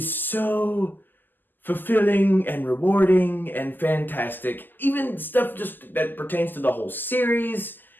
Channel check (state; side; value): late; right; 0.089 ms